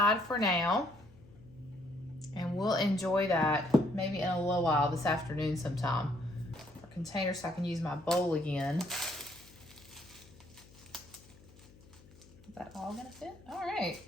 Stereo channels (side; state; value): left; noise; hum, 24 dB below the sound